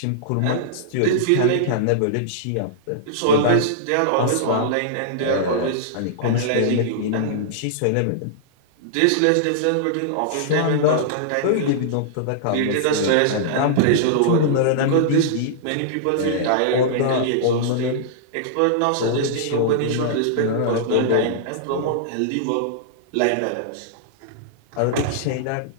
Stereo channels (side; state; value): both; different; correlation -0.02